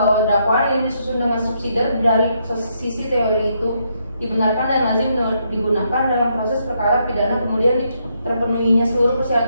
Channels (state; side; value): inverted; both; correlation -0.76